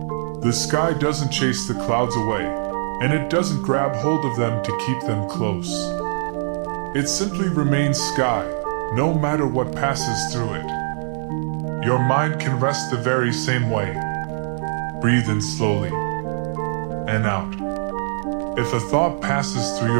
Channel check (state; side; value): silent; left; digital silence